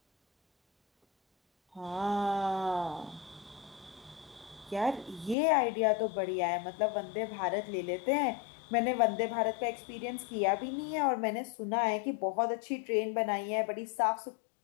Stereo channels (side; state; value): right; drops out; at 5.4 s